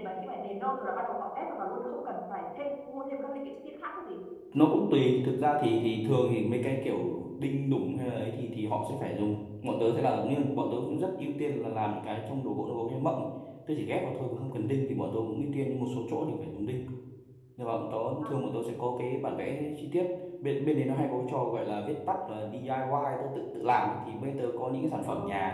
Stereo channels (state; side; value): identical; both; correlation 1.00